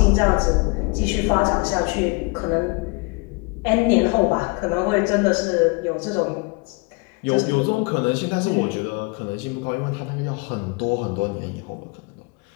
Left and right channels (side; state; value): right; quieter; 29.2 dB